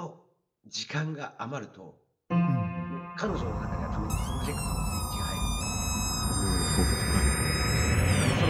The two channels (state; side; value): identical; both; correlation 1.00